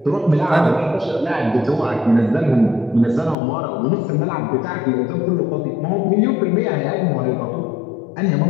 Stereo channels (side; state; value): right; drops out; at 3.4 s